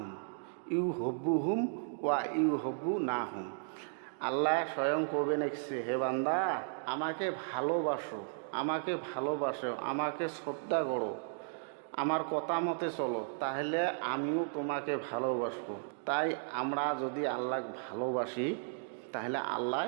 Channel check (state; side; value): silent; left; digital silence